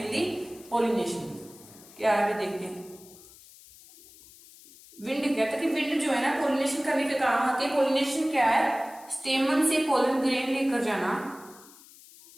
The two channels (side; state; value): left; noise; hiss, 22 dB below the sound